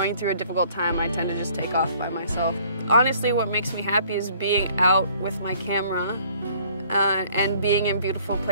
through a difficult time, I tend to just take off by myself. Honestly, what makes me happy is being out with my camera and being in beautiful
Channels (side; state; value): both; inverted; correlation -0.57